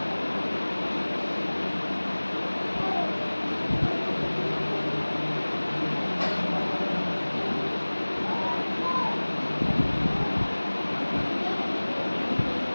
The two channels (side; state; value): both; inverted; correlation -1.00